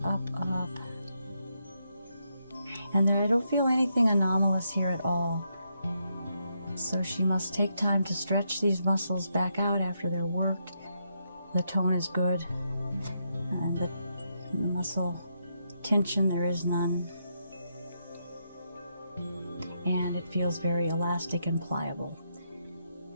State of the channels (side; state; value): both; inverted; correlation -0.80